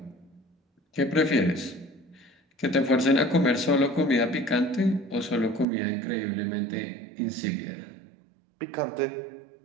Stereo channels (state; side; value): drops out; left; at 5.7 s